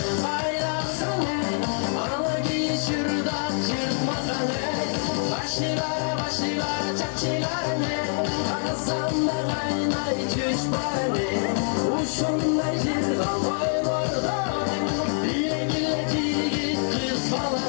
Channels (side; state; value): right; silent; 57 dB below the other